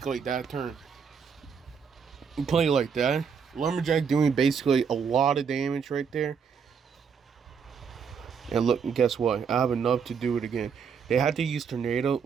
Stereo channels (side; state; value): left; quieter; 6.5 dB